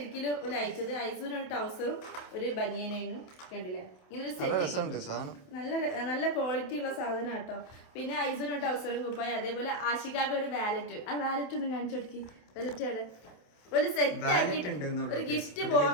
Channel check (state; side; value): late; right; 28 ms